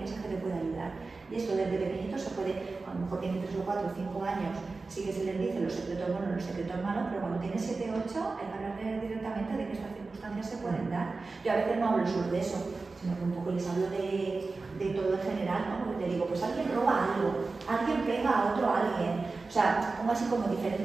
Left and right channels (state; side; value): quieter; left; 3.8 dB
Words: que te puede ayudar. Y esto desde pequeñito se puede, a lo mejor tiene 3 o 4 o 5 años, sí que se les dice los secretos buenos, los secretos malos, pero cuando tiene 7 o 8 hay que hablar directamente de que estas circunstancias se pueden dar. Yo a veces no hablo solo de eso, sino que un poco les hablo de todo en general, ¿no? Porque te digo, pues alguien roba algo, alguien pega a otro alguien. O sea, pongo así como